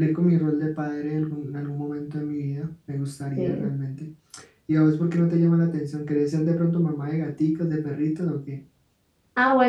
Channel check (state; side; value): identical; both; correlation 1.00